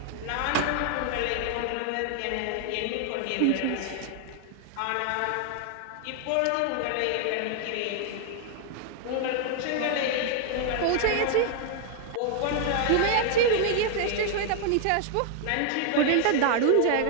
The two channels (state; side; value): different; both; correlation 0.00